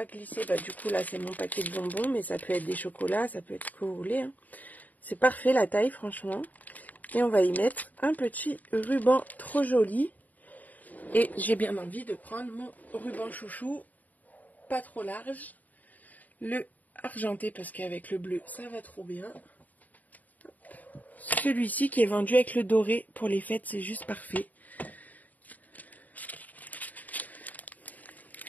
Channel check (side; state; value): right; late; 0.078 ms